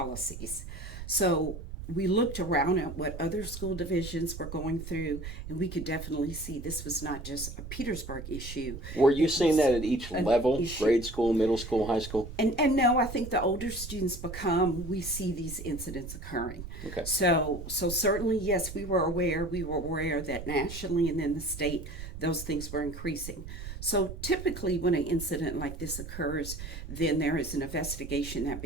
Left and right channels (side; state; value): right; noise; rumble, 10 dB below the sound